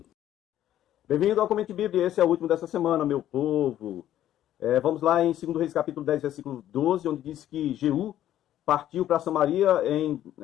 Bem-vindo ao Comente Bíblia, esse é o último dessa semana, meu povo. Vamos lá em 2 Reis capítulo 10, versículo 12, onde diz que Jeú partiu para Samaria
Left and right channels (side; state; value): right; quieter; 12.1 dB